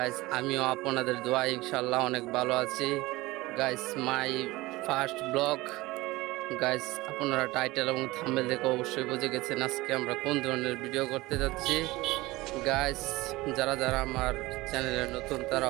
আমিও আপনাদের দোয়া ইনশাল্লাহ অনেক ভালো আছি guys. My first blog guys, আপনারা টাইটেল এবং থাম্বনেল দেখে অবশ্যই বুঝে গেছেন আজকে আমরা কোন ধরনের ভিডিও করতে যাচ্ছি গাইজ। যারা যারা আমার চ্যানেলে নতুন তারা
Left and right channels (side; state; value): left; quieter; 20.0 dB